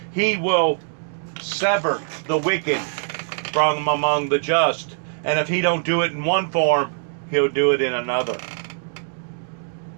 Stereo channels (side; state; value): left; silent; digital silence